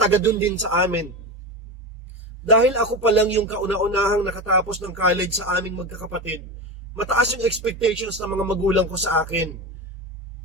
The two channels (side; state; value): both; normal; correlation 0.21